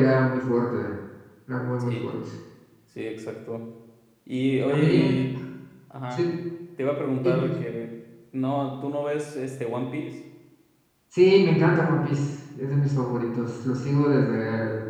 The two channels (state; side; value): identical; both; correlation 1.00